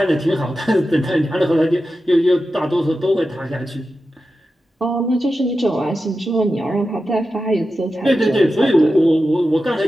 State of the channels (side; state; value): both; normal; correlation 0.92